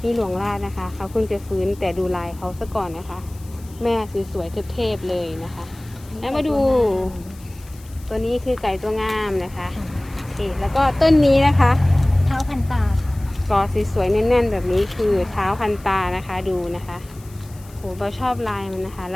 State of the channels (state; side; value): noise; left; hiss, 24 dB below the sound